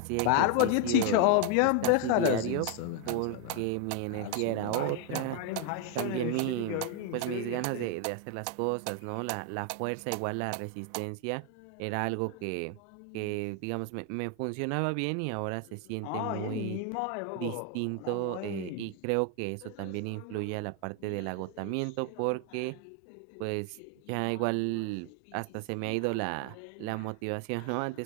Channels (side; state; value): both; different; correlation 0.01